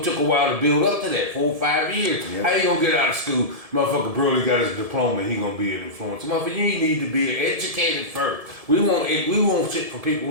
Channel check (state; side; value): late; left; 1.7 ms